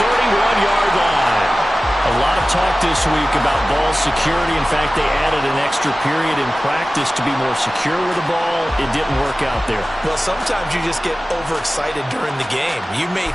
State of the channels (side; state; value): both; normal; correlation 0.96